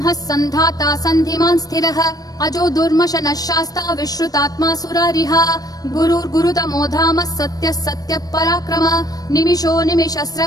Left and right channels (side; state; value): right; late; 0.18 ms